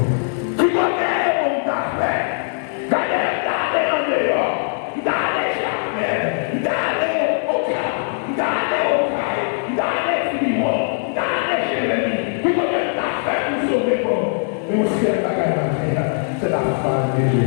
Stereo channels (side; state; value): right; silent; 65 dB below the other